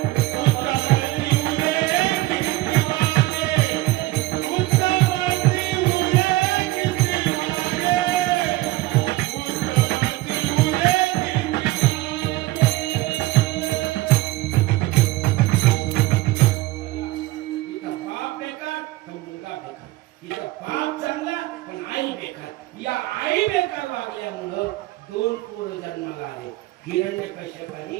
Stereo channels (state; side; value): quieter; left; 18.7 dB